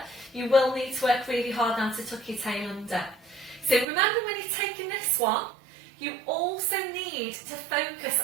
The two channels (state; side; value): drops out; left; at 3.9 s